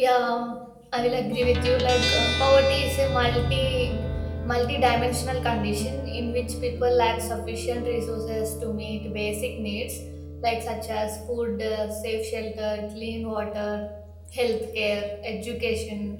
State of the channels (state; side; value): identical; both; correlation 1.00